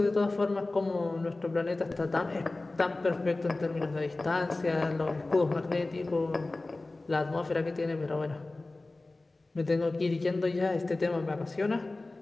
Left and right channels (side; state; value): right; quieter; 3.1 dB